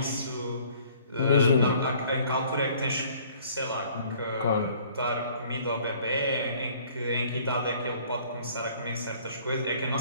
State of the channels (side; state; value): both; inverted; correlation -0.56